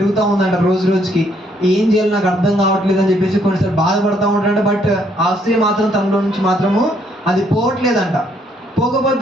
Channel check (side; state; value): both; normal; correlation 0.69